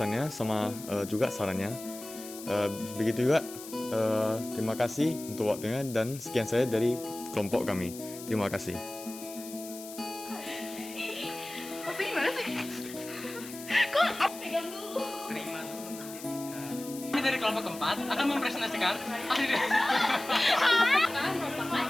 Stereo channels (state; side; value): noise; left; hiss, 14 dB below the sound